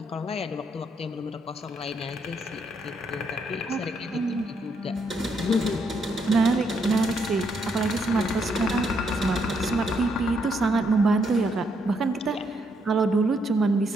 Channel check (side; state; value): both; normal; correlation 0.75